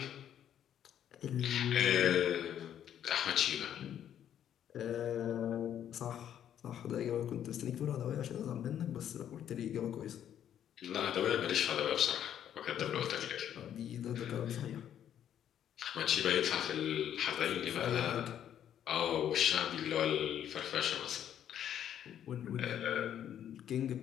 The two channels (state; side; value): quieter; right; 10.1 dB